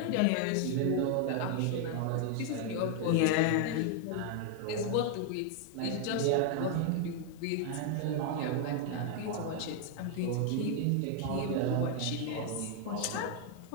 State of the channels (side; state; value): both; different; correlation 0.00